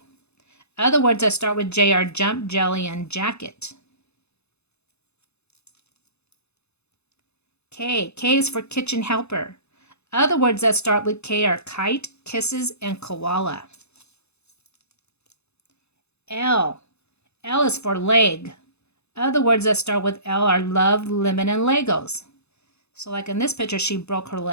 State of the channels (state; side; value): late; right; 0.80 ms